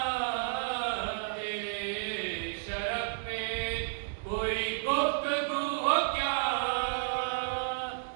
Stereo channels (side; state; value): left; silent; digital silence